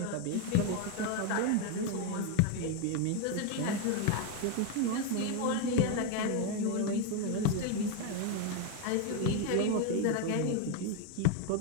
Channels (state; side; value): different; both; correlation 0.02